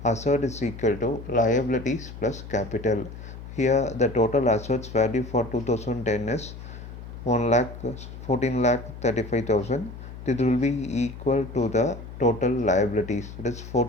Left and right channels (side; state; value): left; noise; hum, 12 dB below the sound